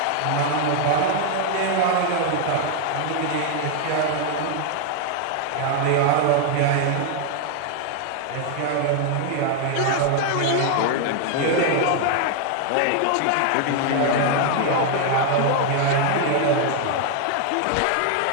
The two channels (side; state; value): both; different; correlation 0.00